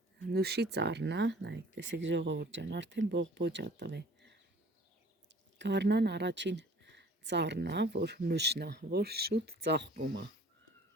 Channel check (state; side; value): normal; both; correlation 0.50